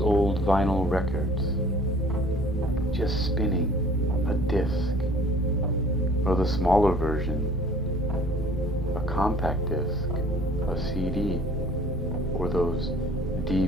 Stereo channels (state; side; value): normal; both; correlation 0.52